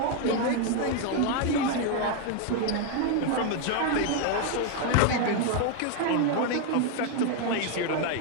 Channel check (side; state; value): both; different; correlation 0.01